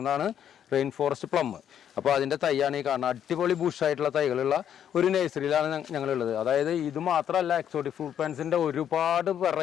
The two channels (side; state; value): right; quieter; 9.5 dB